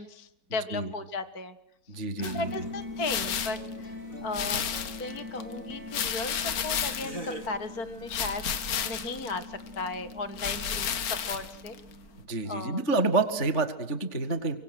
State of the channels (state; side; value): late; right; 4.3 ms